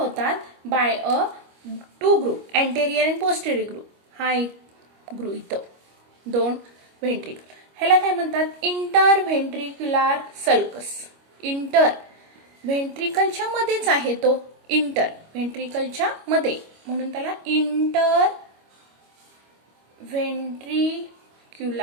by a 2 group, anterior and posterior group. हा एक ग्रुप इथं 2 ventricle. ह्याला काय म्हणतात इंटरव्हेंट्रिक्युलर सल्कस. इंटर व्हेंट्रिकलच्या मध्येच आहे तो, इंटर व्हेंट्रिकलच्या मध्ये म्हणून त्याला इंटर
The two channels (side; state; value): left; late; 25 ms